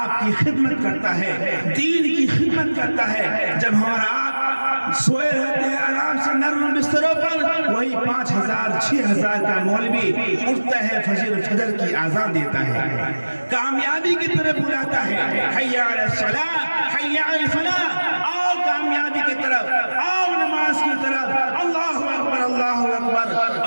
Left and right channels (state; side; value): inverted; both; correlation -1.00